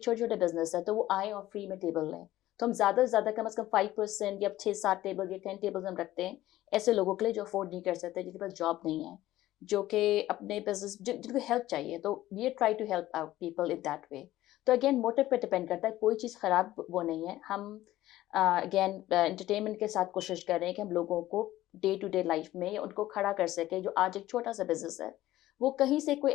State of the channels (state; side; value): quieter; right; 15.2 dB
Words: बिज़नेस हैं, तो वो आएँ और फ्री में टेबल लें। तो हम ज़्यादा से ज़्यादा कम से कम 5% या 6-7 टेबल या 10 टेबल्स हम रखते हैं ऐसे लोगों के लिए जो अफ़ोर्ड नहीं कर सकते, जिनके पास जॉब नहीं है, जो कि अपने बिज़नेस जिनको हेल्प चाहिए, तो we try to help out people in that way. तो अगेन मोटिव पे डिपेंड करता है, कोई चीज़ खराब वो नहीं है। हम अगेन एंटरटेनमेंट के साथ कोशिश कर रहे हैं कि हम लोगों को डे टू डे लाइफ में उनको खड़ा कर सकें, जो आज एक छोटा-सा बिज़नेस है, वो कहीं से कोई